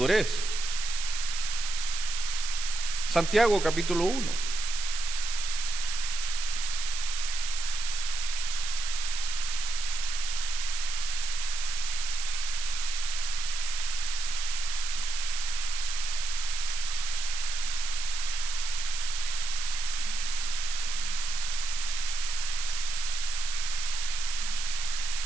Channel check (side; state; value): right; noise; hiss, 5 dB below the sound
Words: Santiago capítulo 1.